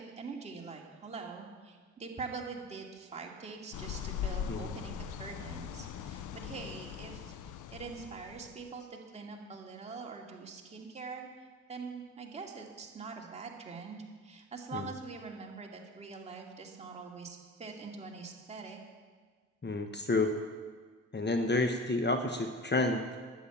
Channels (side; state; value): both; normal; correlation 0.35